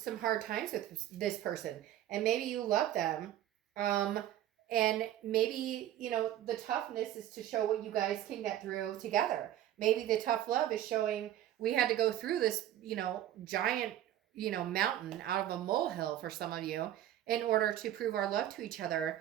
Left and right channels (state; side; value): quieter; left; 12.5 dB